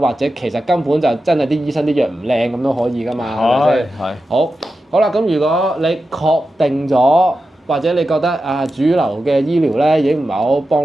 者其實根本就真係啲醫生啲藥唔靚咁都可以噶嘛，係咪先？係。好啦，咁如果你確定咗，或者你覺得主流嘅醫療咧已經唔係好幫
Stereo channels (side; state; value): both; normal; correlation 0.91